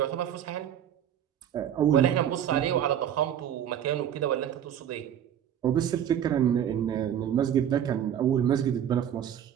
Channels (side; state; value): left; quieter; 9.8 dB